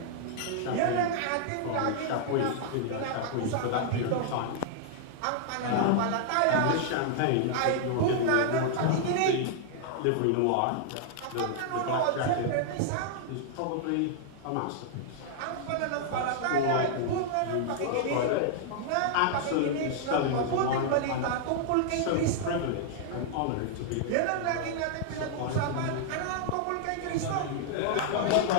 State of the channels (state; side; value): different; both; correlation -0.01